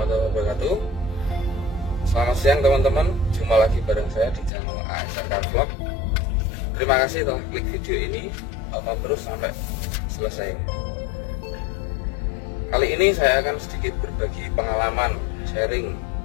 wabarakatuh. Selamat siang teman-teman, jumpa lagi bareng saya di channel ASRK Vlog. Terima kasih telah klik video ini, tonton terus sampai selesai. Kali ini saya akan sedikit berbagi pengalaman, sharing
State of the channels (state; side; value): drops out; right; at 4.5 s